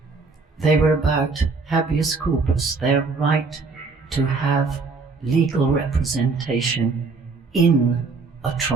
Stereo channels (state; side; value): quieter; left; 4.2 dB